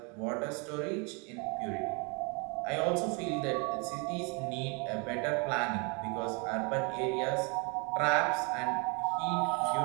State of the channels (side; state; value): left; quieter; 32.7 dB